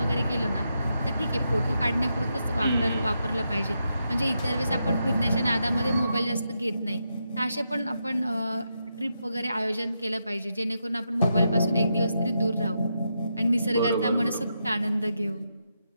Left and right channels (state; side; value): inverted; both; correlation -0.84